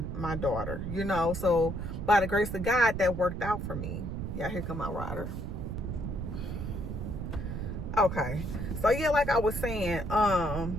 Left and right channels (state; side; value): noise; right; rumble, 5 dB below the sound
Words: daughter, you know. So by the grace of God, that worked out for me. Yeah, here come my rider. Okay, so yeah, like I was saying,